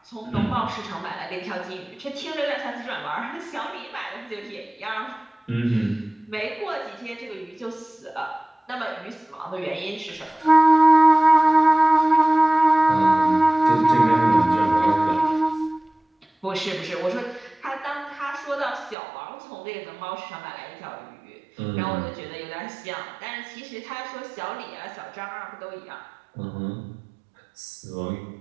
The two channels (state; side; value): drops out; left; at 18.9 s